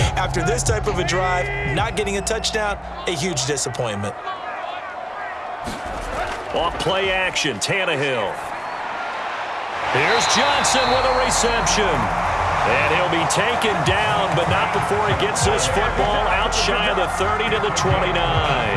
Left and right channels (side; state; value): both; identical; correlation 1.00